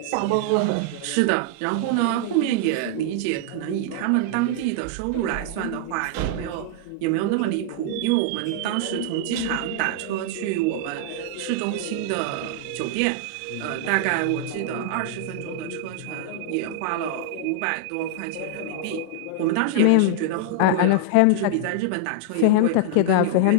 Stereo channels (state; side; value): different; both; correlation -0.01